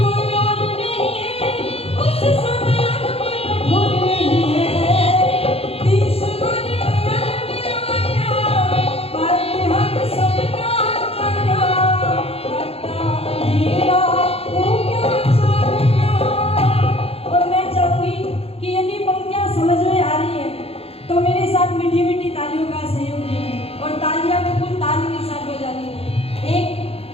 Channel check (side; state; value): right; late; 0.29 ms